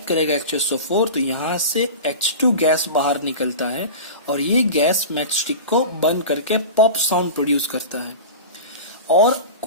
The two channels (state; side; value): inverted; both; correlation -0.31